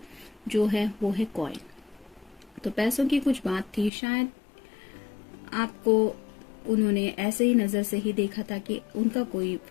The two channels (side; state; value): right; drops out; at 3.9 s